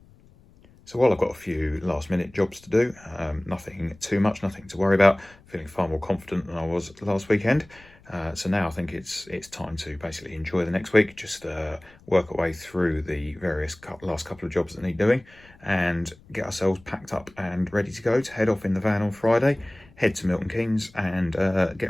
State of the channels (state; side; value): noise; left; rumble, 26 dB below the sound